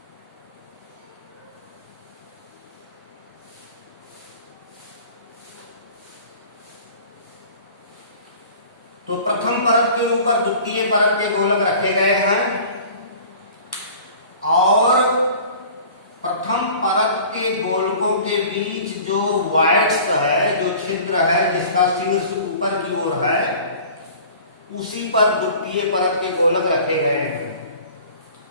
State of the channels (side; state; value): both; inverted; correlation -0.44